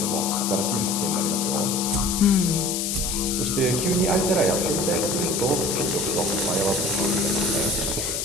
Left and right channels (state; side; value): noise; left; hiss, 1 dB below the sound